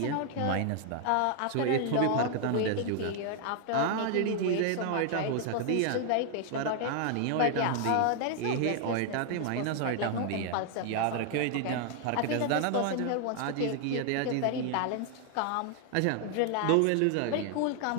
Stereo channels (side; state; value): both; different; correlation 0.00